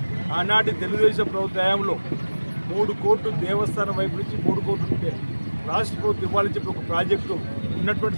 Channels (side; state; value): both; inverted; correlation -1.00